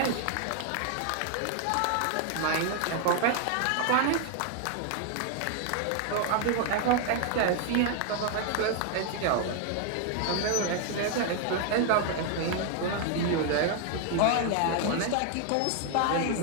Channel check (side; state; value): both; different; correlation 0.00